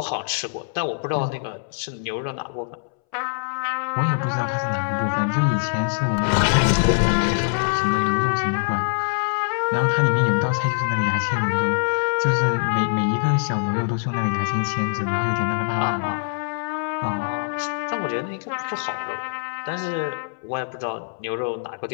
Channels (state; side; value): silent; right; 63 dB below the other